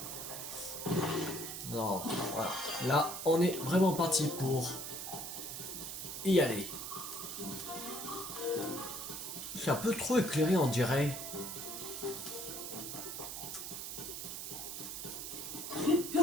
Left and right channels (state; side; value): noise; right; hiss, 6 dB below the sound